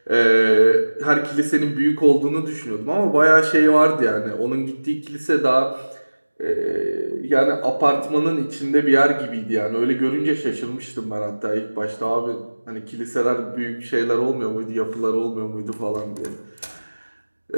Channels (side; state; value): both; inverted; correlation -1.00